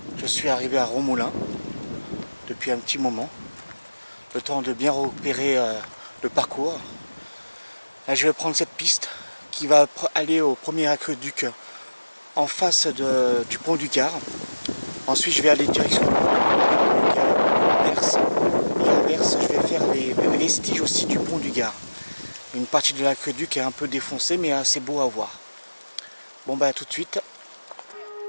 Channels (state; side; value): inverted; both; correlation -1.00